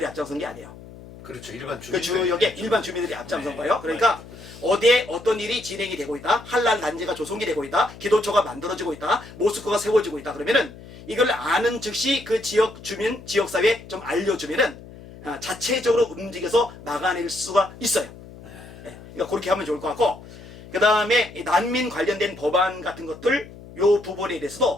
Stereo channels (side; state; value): left; noise; hum, 17 dB below the sound